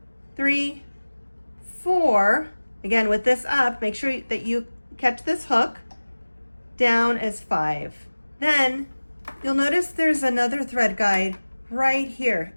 3, 4. Again, with this up, make sure that you catch this hook. Down is 5. Then you'll notice there's another thread guide right here.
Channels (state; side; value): inverted; both; correlation -1.00